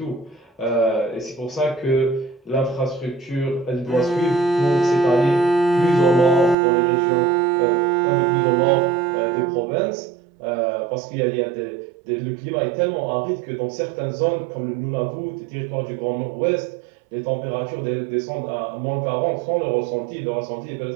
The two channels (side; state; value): left; drops out; at 6.6 s